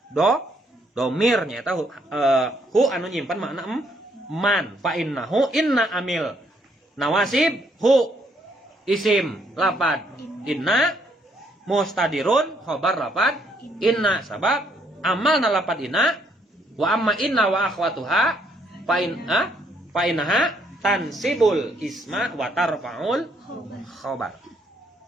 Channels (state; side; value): normal; both; correlation 0.70